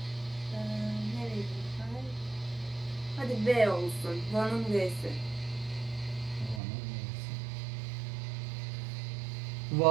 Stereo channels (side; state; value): left; drops out; at 6.6 s